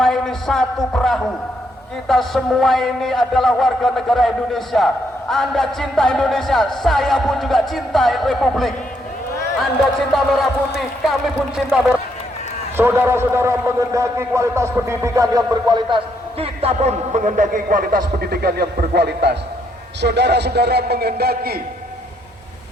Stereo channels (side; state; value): both; normal; correlation 0.74